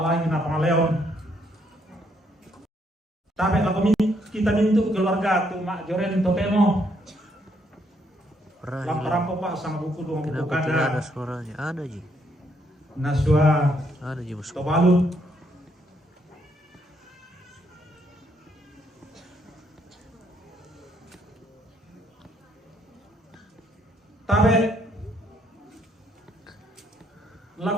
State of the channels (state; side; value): normal; both; correlation 0.72